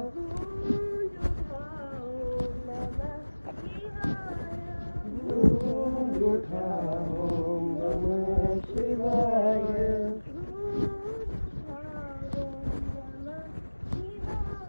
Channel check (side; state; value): both; inverted; correlation -1.00